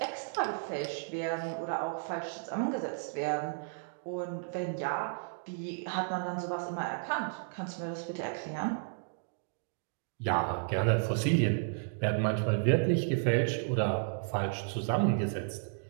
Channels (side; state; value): left; silent; digital silence